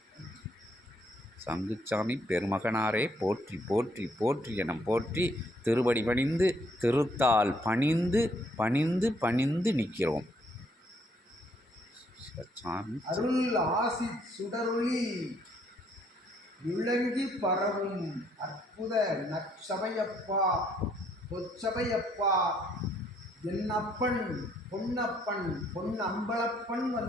சங்குச்சாமி பெருமகனாரே போற்றி போற்றி போற்றி என போற்றி திருவடி பணிந்து, திருத்தால் பணிந்து பணிந்து பணிந்து நிற்கிறோம். அருள் ஆசி சுடரொளி விளங்கி பரவும் அற்புத நற்சபையப்பா, பொற்சபையப்பா, என்னப்பன் பொன்னப்பன் பொன்னம்பலப்பன்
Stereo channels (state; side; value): normal; both; correlation 0.68